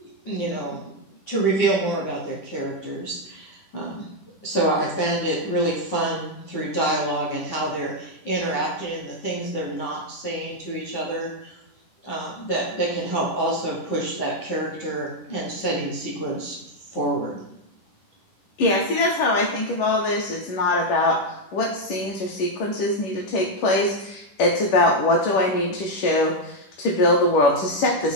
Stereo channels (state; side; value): late; right; 10 ms